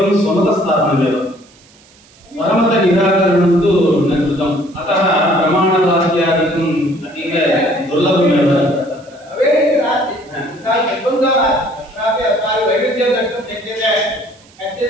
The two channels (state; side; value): noise; right; hiss, 28 dB below the sound